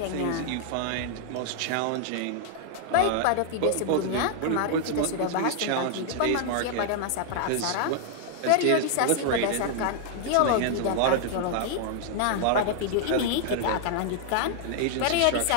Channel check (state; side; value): different; both; correlation 0.00